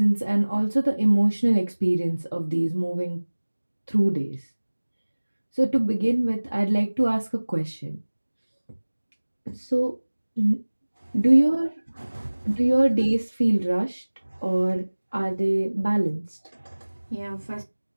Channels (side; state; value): both; inverted; correlation -1.00